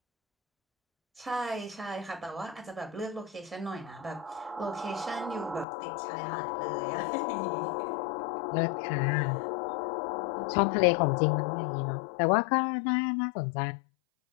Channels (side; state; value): right; drops out; at 5.7 s